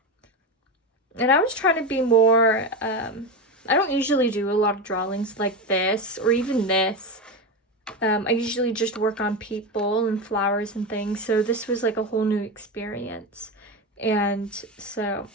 And I was trying to be more, I don't usually do a lot of drawings like this or even this. I usually just work on people and flowers and things. So this was like a whole new experience. And so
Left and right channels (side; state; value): both; normal; correlation 0.18